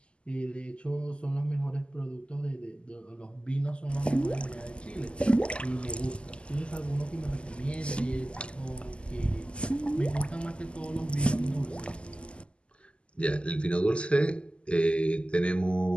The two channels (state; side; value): late; right; 0.052 ms